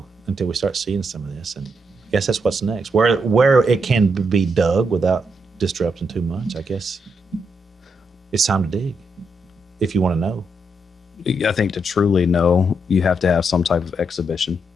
until we start seeing some of this. And I guess that's what's next. Where it can be dug without disrupting too much, I guess it's time to dig if you want to know. I think to truly know, you have to have some type of exhibition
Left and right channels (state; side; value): normal; both; correlation 0.80